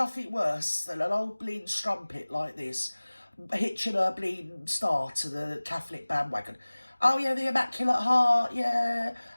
worse than an old bleeding strumpet like this hitching her bleeding star to the Catholic bandwagon. Oh yeah, the Immaculate Heart, yeah,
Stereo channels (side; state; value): both; inverted; correlation -1.00